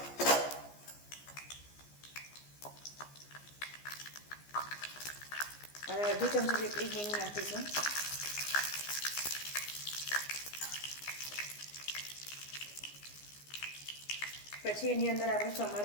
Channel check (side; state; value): right; late; 15 ms